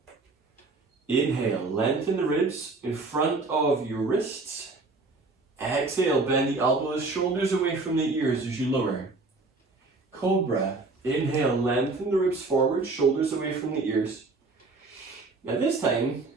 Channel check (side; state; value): left; quieter; 3.6 dB